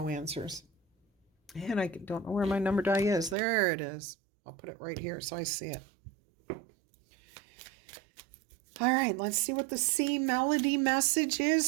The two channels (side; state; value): left; drops out; at 3.4 s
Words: answers. And I don't know where my number die is. There it is. I'll put it right here so I see it. All right, let's see what the C melody message